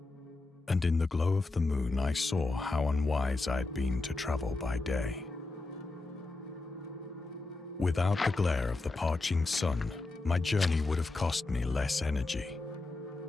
And in the glow of the moon I saw how unwise I had been to travel by day. Without the glare of the parching sun, my journey would have cost me less energy.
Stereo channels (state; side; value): quieter; right; 3.3 dB